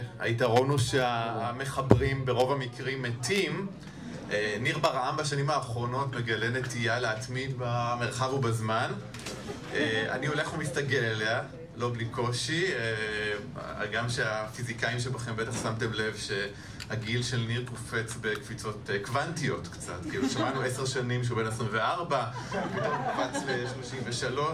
היתרון הוא שהמחברים ברוב המקרים מתים. ניר ברעם בשנים האחרונות מגלה נטייה להתמיד במרחב ובזמן. אני הולך ומסתגל אליה, לא בלי קושי. גם שהפיזיקאים שבכם בטח שמתם לב שהגיל של ניר קופץ בקפיצות קוונטיות קצת. כאילו שמענו 10 שנים שהוא בן 24, פתאום קפץ ל-33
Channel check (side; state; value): both; identical; correlation 1.00